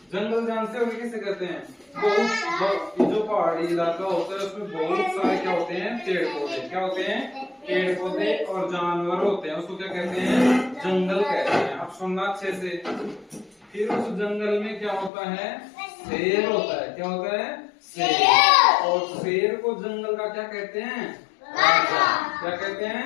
जंगल जानते हो किसे कहते हैं? बहुत जो पहाड़ी इलाका होता है उसमें बहुत सारे क्या होते हैं? पेड़ पौधे। क्या होते हैं? पेड़ पौधे और जानवर होते हैं, उसको क्या कहते हैं? जंगल कहते हैं। अब सुनना अच्छे से। फिर उस जंगल में क्या होता है? शेर होता है। क्या होता है? शेर। और शेर को जंगल का क्या कहते हैं? राजा। क्या कहते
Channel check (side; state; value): right; drops out; at 15.1 s